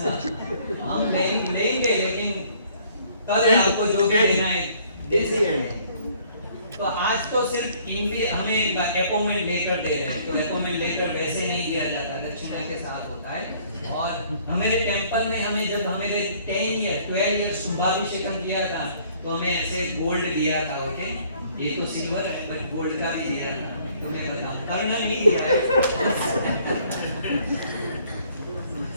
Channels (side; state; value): both; inverted; correlation -0.60